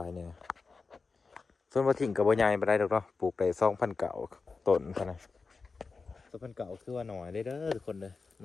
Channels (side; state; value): right; quieter; 4.4 dB